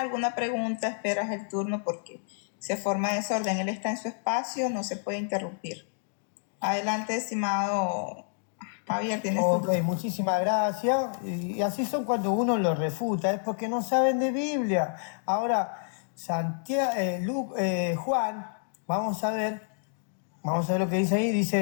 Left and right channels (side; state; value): right; silent; digital silence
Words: pregunta, esperas el turno porque se forma desorden. Él está en su espacio, no se puede interrumpir. Adelante, estimado Javier, tienes Ok, muchísimas gracias. Y así son cuando uno lo refuta, es porque no saben de Biblia. Ahora, Juan, vamos a ver lo que dice ahí.